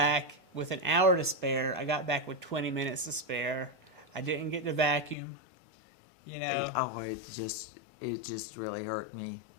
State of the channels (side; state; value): right; drops out; at 5.2 s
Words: with an hour to spare. I got back with 20 minutes to spare. I didn't get to vacuum. You know, Oh, it just really hurt me